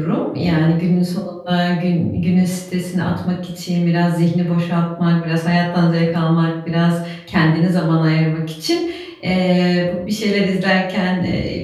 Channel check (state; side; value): identical; both; correlation 1.00